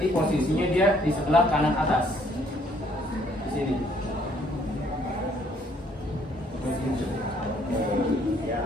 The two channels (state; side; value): normal; both; correlation 0.64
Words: posisinya dia di sebelah kanan atas. Di sini.